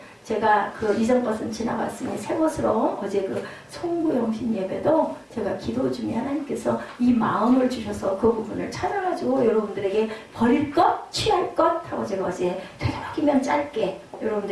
제가 이전 것은 지나갔으니 새 것으로 어제 송구영신 예배도 제가 기도 중에 하나님께서 이 마음을 주셔서 그 부분을 찾아가지고 여러분들에게 버릴 것, 취할 것 하고 제가 어제 되도록이면 짧게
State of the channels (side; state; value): both; identical; correlation 1.00